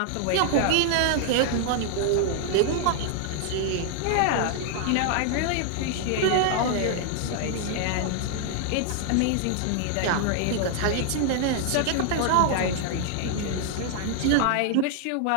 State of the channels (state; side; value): different; both; correlation 0.00